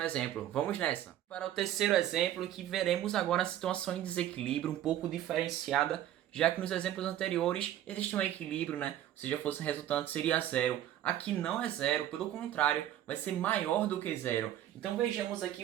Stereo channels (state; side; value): quieter; left; 12.1 dB